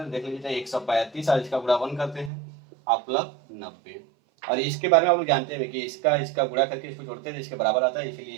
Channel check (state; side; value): drops out; left; at 2.3 s